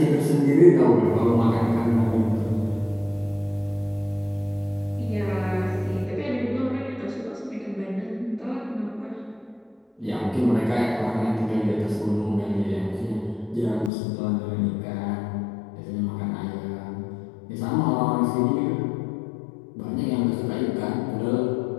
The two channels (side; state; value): right; drops out; at 13.9 s